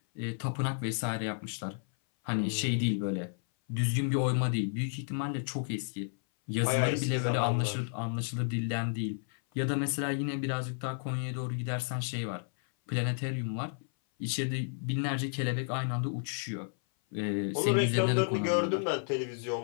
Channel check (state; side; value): silent; right; 56 dB below the other